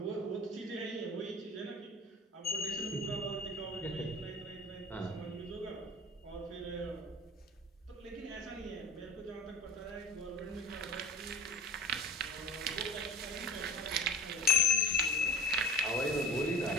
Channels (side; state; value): both; normal; correlation 0.39